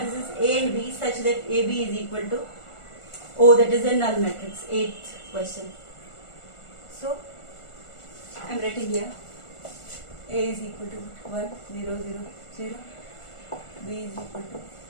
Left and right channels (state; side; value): late; right; 1.4 ms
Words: A and B such that AB is equal to O, that is a null matrix. 8th question. So I am writing here A is equal to 1 0 0 0, B is equal to